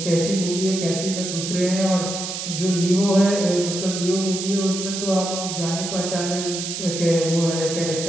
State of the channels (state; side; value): noise; right; hiss, 5 dB below the sound